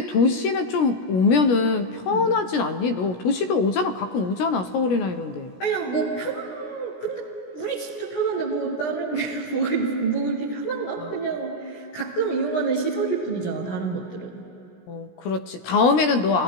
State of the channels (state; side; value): late; right; 17 ms